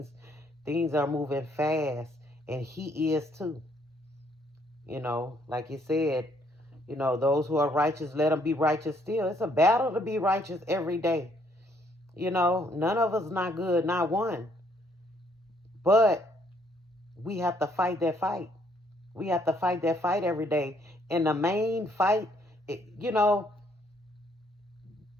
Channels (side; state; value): both; normal; correlation 0.68